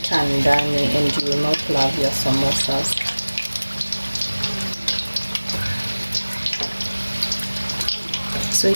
ndani and you will not love your samosas. So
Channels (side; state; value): both; inverted; correlation -1.00